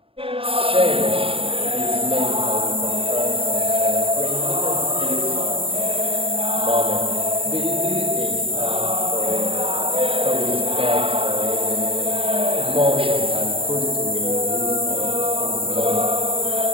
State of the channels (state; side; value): late; left; 0.27 ms